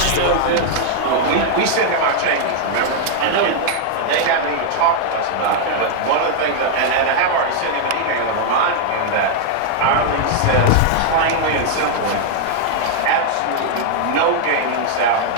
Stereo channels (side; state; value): both; different; correlation 0.00